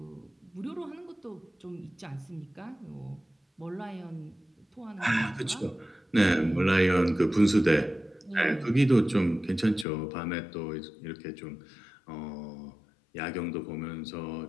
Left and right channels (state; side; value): drops out; right; at 9.9 s